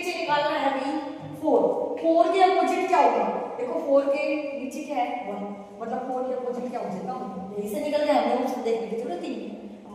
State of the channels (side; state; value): both; identical; correlation 1.00